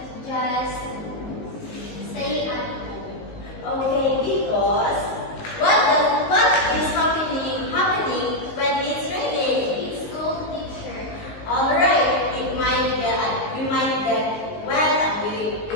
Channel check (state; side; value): late; right; 19 ms